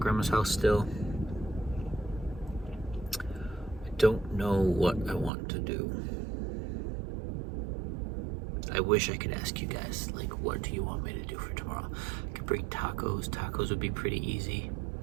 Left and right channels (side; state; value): left; drops out; at 5.3 s